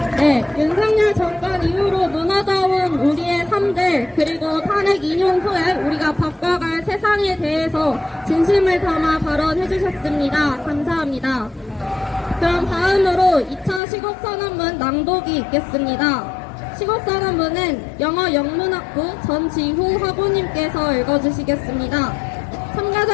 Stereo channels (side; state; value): right; drops out; at 13.8 s